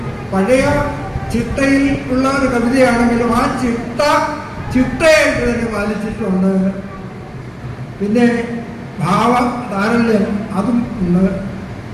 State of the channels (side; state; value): both; identical; correlation 1.00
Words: പഴയ ചിട്ടയിൽ ഉള്ള ഒരു കവിതയാണെങ്കിലും ആ ചിട്ടയായിട്ട് തന്നെ പാലിച്ചിട്ടുണ്ട്. പിന്നെ ഭാവ താരല്യം അതും ഉണ്ട്.